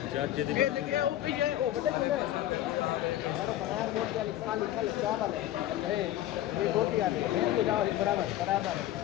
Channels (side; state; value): right; quieter; 13.5 dB